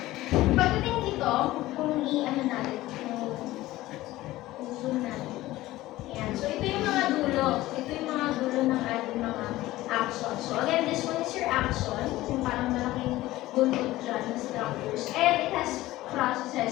pagdating dito, kung i-ano natin, kung zoom natin. Ayan. So, ito yung mga dulo. Ito yung mga dulo ng ating mga axon. So, again, this one is your axon. Yung parang malaking dulo dyan na structures. And it has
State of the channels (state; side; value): quieter; right; 16.9 dB